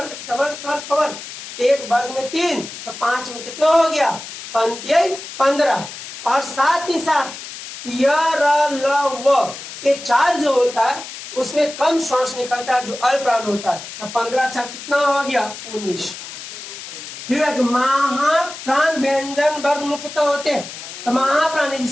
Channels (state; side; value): noise; left; hiss, 11 dB below the sound